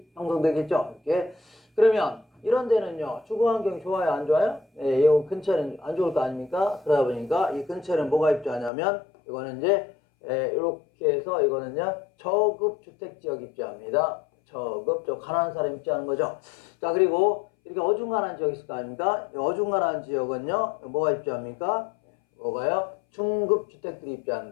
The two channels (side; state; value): right; drops out; at 8.7 s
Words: 형성되겠죠. 이렇게. 그러면 이런 데는요, 주거 환경이 좋아요, 안 좋아요? 네, 이 근처는 안 좋을 거 아닙니까? 그러다 보니까 이 근처는 뭐가 입주하냐면, 이거는 이제, 이렇게 해서 이거는요, 저급 주택지역 입주합니다. 저 가난한 사람 입주하는 거죠. 자, 그리고 이렇게 어중간한 지역이 있을 거 아닙니까? 이 어중간한 지역은요, 뭐가 입주합니까? 뭐가요? 중급 주택들이